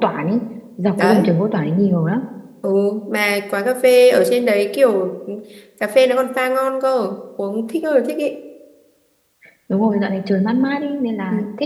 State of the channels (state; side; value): identical; both; correlation 1.00